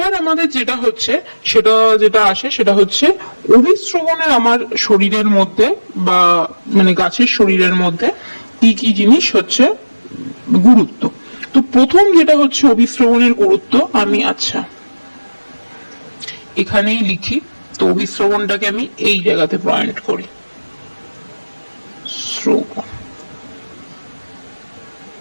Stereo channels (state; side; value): inverted; both; correlation -1.00